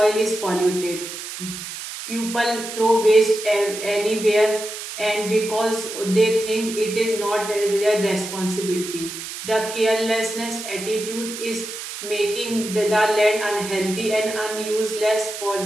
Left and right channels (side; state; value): right; noise; hiss, 9 dB below the sound